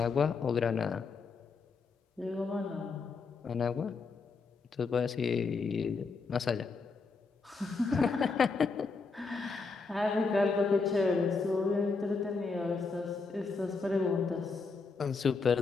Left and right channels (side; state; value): right; quieter; 4.5 dB